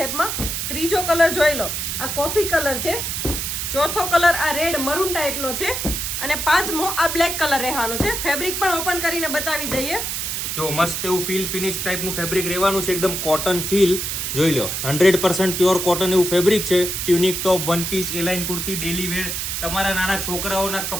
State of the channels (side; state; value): right; noise; hiss, 3 dB below the sound